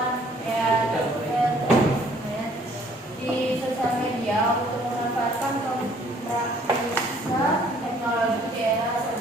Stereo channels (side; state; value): both; normal; correlation 0.60